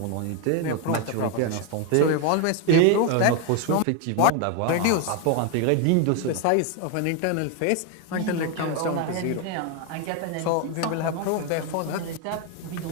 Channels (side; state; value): both; different; correlation 0.01